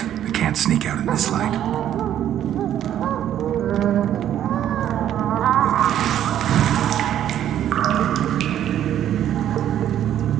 I can't sneak out in this light.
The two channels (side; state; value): left; quieter; 10.9 dB